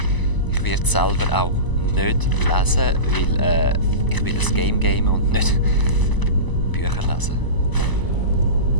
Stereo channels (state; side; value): late; right; 1.0 ms